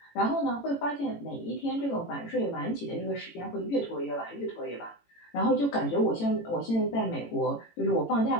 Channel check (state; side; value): late; right; 18 ms